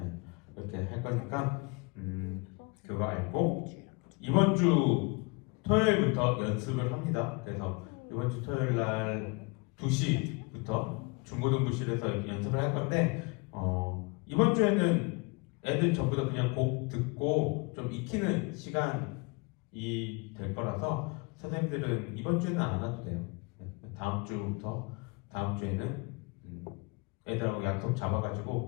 이렇게 할 거니까 그거 알고 이번 주 토요일부터 연습을 합니다. 그래서 이번 주 토요일 날 2시부터 중고등부실에서 연습을 할 건데 이번 주에는 애들 전부 다 그냥 곡 듣고 좀 익히는 시간이 될 거라서 선생님들은 이번 주에는 안 와도 돼요. 다음 주부터 다음 주에는 애들하고 약속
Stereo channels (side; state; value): right; quieter; 29.3 dB